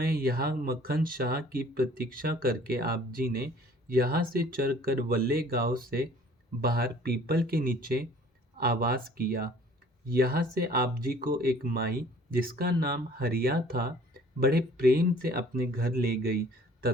यहाँ मक्खन शाह की प्रतीक्षा करके आप जी ने यहाँ से चलकर वल्ले गांव से बाहर पीपल के नीचे आवास किया। यहाँ से आप जी को एक माई जिसका नाम हरिया था बड़े प्रेम से अपने घर ले गई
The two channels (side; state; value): both; normal; correlation 0.53